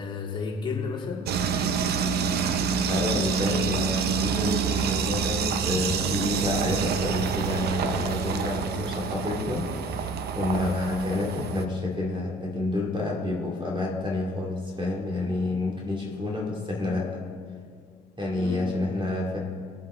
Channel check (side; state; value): both; normal; correlation 0.50